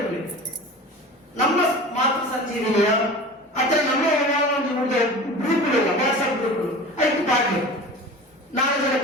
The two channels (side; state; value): both; normal; correlation 0.36